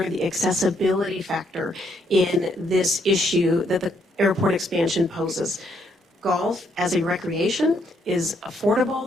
the accessibility factor in this issue that the airport expansion poses. Golf as a recreation is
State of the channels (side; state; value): both; normal; correlation 0.73